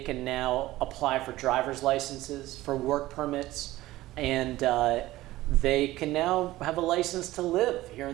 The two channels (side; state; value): left; quieter; 16.7 dB